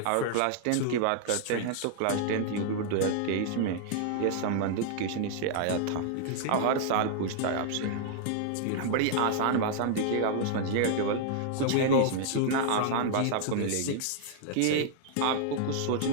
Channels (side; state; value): both; different; correlation -0.01